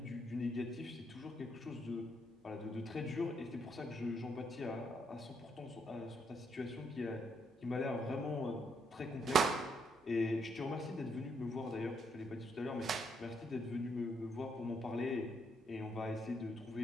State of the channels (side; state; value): right; noise; hum, 29 dB below the sound